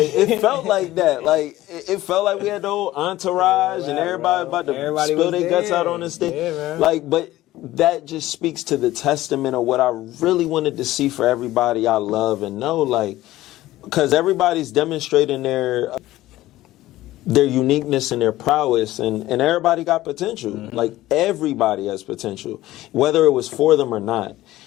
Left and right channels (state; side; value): quieter; right; 16.0 dB